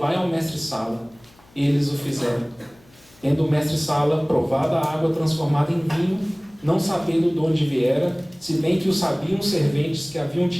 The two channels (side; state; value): left; noise; hum, 29 dB below the sound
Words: ao mestre-sala. Eles o fizeram. Tendo o mestre-sala provado a água transformada em vinho, não sabendo de onde viera, se bem que o sabiam os serventes que haviam